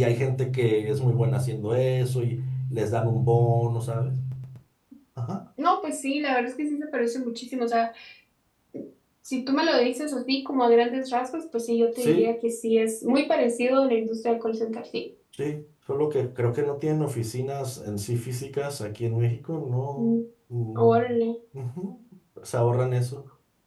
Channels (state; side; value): identical; both; correlation 1.00